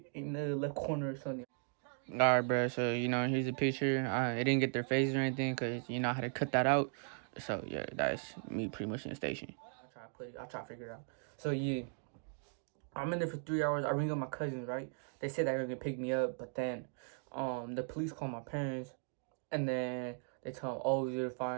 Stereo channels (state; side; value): silent; left; 53 dB below the other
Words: in the left corner or something. Alright, bro. So, you know, here's a picture. It didn't get their faces or anything because, you know, I had to cut that out. So, yeah, that's me pretty much in the station. I'll try to figure it out. So, yeah, I'm in there for 3 hours. I ring up my cousins, right? They said they were going to pick me up, but then the police call my parents, and then they tell them, oh, you're